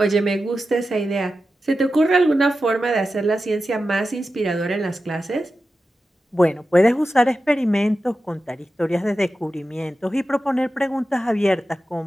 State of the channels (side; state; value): both; normal; correlation 0.92